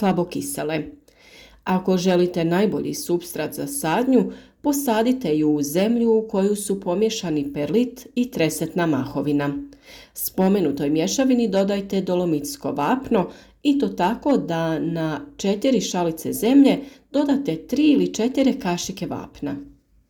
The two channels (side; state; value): both; identical; correlation 1.00